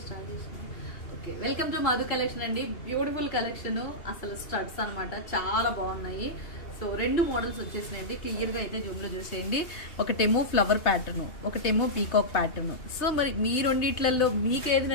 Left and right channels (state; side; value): late; right; 2.8 ms